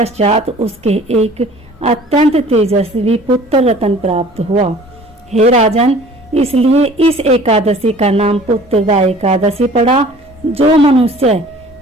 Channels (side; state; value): both; normal; correlation 0.49